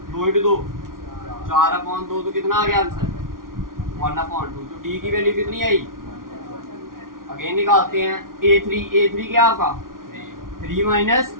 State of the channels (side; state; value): left; late; 0.91 ms